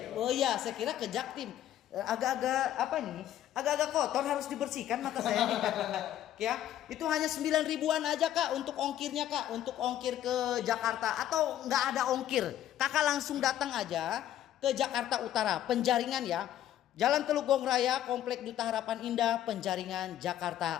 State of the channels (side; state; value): right; quieter; 11.9 dB